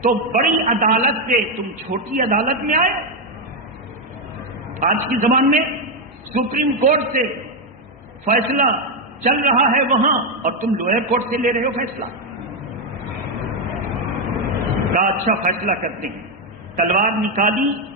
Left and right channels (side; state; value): both; normal; correlation 0.04